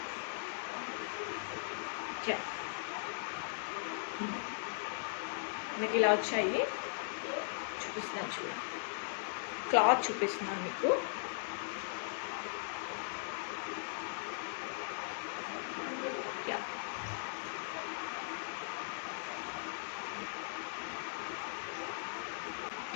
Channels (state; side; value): silent; right; digital silence